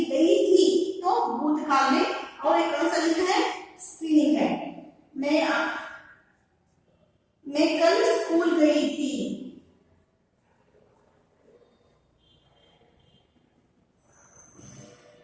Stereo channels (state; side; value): identical; both; correlation 1.00